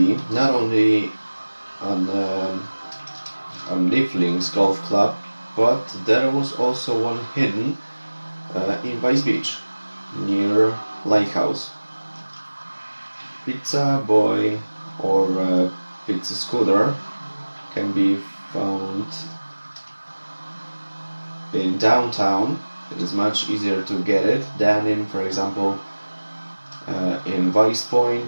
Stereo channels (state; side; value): inverted; both; correlation -1.00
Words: not only on Leaflings Golf Club, but there was also one hidden in Vice Beach, near Lighthouse. Pizza Boy or Pizza Scooter can be found in downtown. It is much easier to get it than in, for example, in Vice